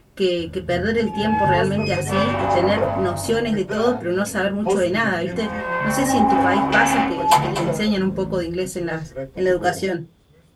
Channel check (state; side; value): identical; both; correlation 1.00